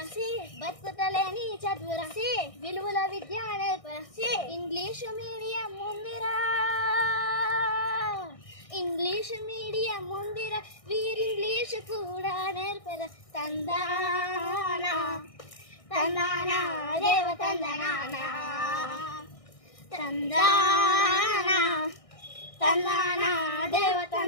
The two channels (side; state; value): right; late; 1.6 ms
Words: బతుకుతలేని చదువు రాసి, విలువల విద్య నేర్పరసి. ఇంగ్లీషు మీడియం ముందిరా, ఇంగ్లీషు మీడియం ముందిరా, వీరింగ్లీషు కూడా నేర్పర. తందానా తందానా దేవ తందనానా, తందానా తందానా దేవ